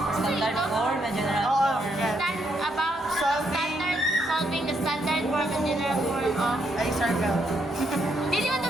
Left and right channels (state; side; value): normal; both; correlation 0.76